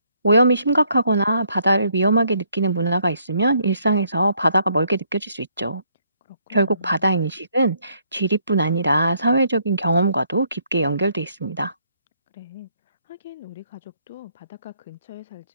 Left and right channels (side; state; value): both; inverted; correlation -0.69